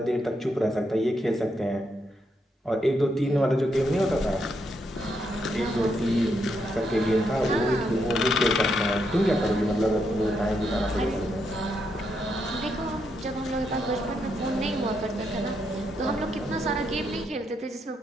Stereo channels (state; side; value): normal; both; correlation 0.79